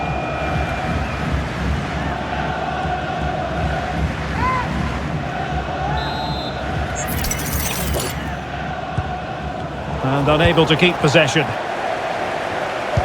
And unable to keep possession.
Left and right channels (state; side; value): identical; both; correlation 1.00